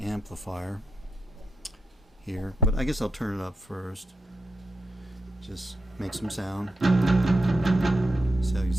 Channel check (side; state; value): both; normal; correlation 0.85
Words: here, but I guess I'll turn it up first. Just make some sound. So you